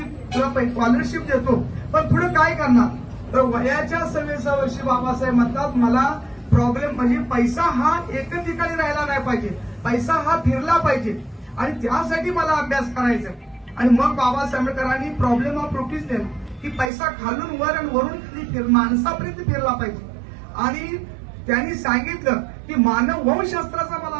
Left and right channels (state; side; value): drops out; left; at 16.9 s